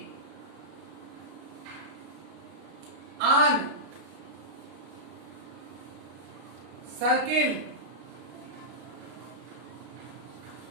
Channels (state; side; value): late; left; 33 ms